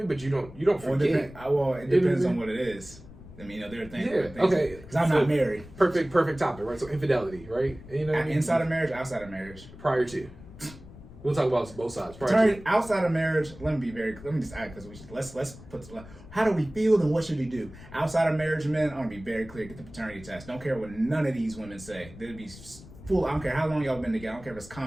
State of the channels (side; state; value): left; noise; rumble, 18 dB below the sound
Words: But you don't forget. Well, it depends on what it is. I mean, there are things. Yeah. Okay. Because I'm not married. Perfect topic, right? So infidelity, right? You know what I mean? Inside of marriage, outside of marriage. Prior to. We'll talk about both sides. Outside of marriage, let me just add, because let's put, how do we feel and what should we do? Outside of marriage, men, I want to be very clear. Get the paternity test. Don't care what none of these women say. They'd be full. I don't care how long y'all been together. I don't care if it's